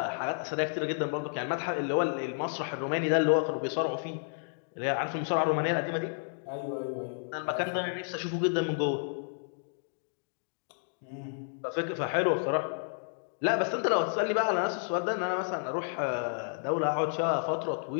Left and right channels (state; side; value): silent; right; digital silence